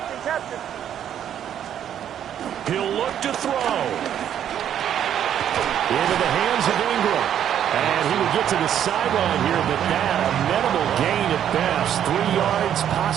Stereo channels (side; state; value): left; quieter; 9.9 dB